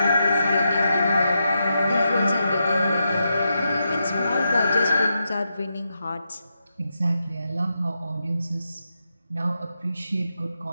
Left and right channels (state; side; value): inverted; both; correlation -0.86